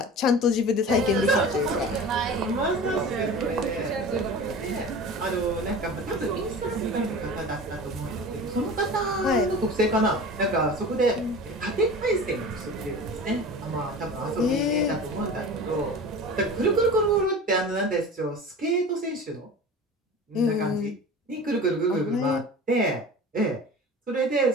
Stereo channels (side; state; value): both; normal; correlation 0.36